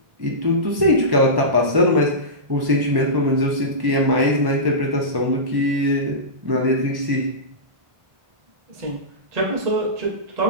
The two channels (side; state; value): left; late; 1.1 ms